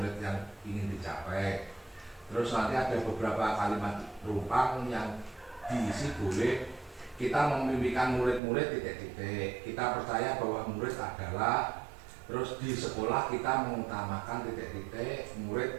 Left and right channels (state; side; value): drops out; left; at 8.4 s